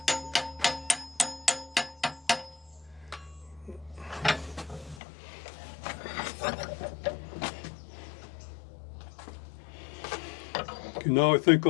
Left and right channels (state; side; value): drops out; right; at 5.0 s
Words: Okay, now I think